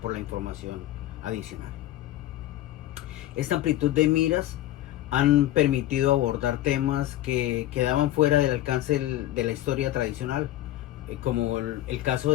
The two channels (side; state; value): right; quieter; 14.4 dB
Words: por la información adicional. Esta amplitud de miras han permitido abordar temas que quedaban fuera del alcance de la historia tradicional, como el caso